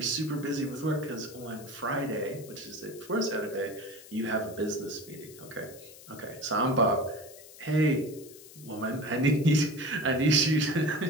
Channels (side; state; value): left; noise; hiss, 19 dB below the sound